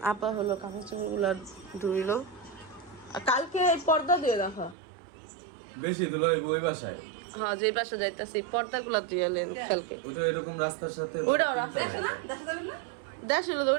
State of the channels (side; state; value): left; drops out; at 4.8 s